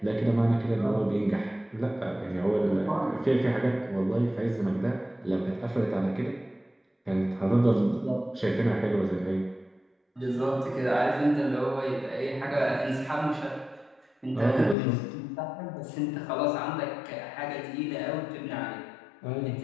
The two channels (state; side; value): drops out; right; at 14.8 s